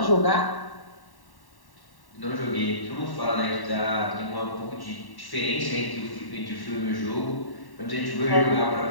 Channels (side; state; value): right; late; 1.1 ms